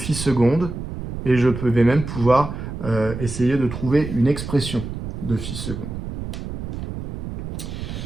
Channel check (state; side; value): noise; right; rumble, 7 dB below the sound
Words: seconde et je vais même pouvoir essayer de trouver une expression de phi seconde.